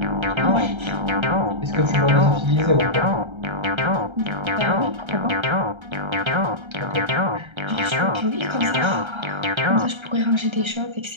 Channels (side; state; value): left; late; 1.3 ms